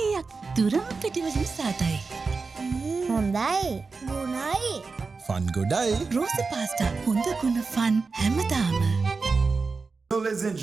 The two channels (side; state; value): left; quieter; 4.4 dB